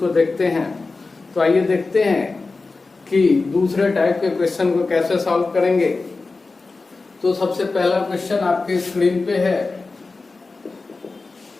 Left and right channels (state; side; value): quieter; right; 3.8 dB